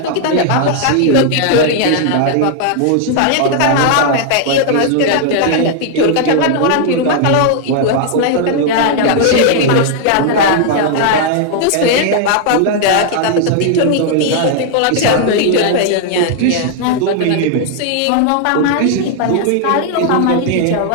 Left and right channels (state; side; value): different; both; correlation 0.00